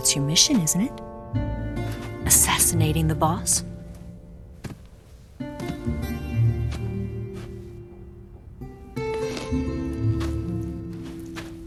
your mission, isn't it? Assassinating the boss?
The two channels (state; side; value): identical; both; correlation 1.00